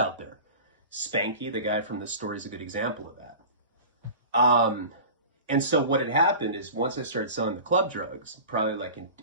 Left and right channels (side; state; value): both; inverted; correlation -0.36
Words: there. Spanky, the guy from this story, is a good example of that. And so what had happened is once I started selling the club drugs, probably like